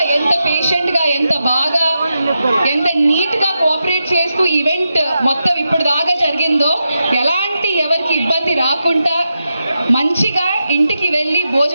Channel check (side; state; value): both; inverted; correlation -0.88